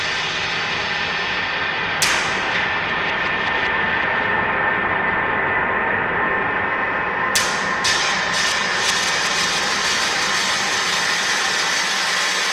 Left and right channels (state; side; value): identical; both; correlation 1.00